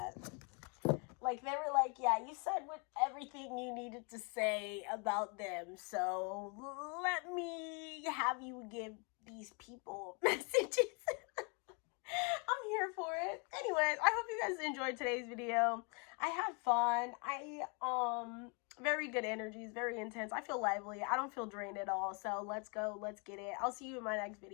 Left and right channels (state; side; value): quieter; right; 34.4 dB